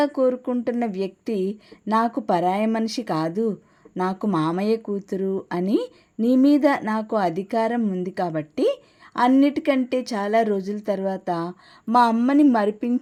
కోరుకుంటున్న వ్యక్తి నాకు పరాయి మనిషి కాదు, నాకు మామయ్య కూతురు అని నీ మీద నాకు అధికారం ఉంది కాబట్టి అన్నిటికంటే చాలా రోజుల తర్వాత మా అమ్మని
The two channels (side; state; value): both; identical; correlation 1.00